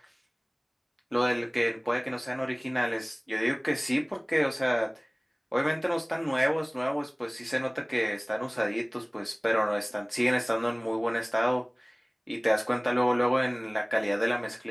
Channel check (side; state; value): both; identical; correlation 1.00